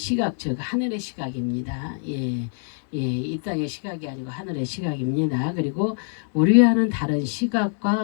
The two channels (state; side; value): silent; right; 59 dB below the other